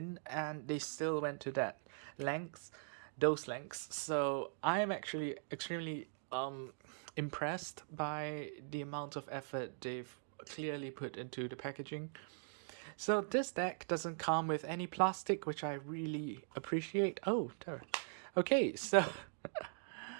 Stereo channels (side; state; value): left; silent; digital silence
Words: and they still went to that length, those lengths. So I am actually extremely impressed by the amount of effort they've clearly put into the packaging. So this deck doesn't come with any plastic, which I really appreciate. Oh, okay, so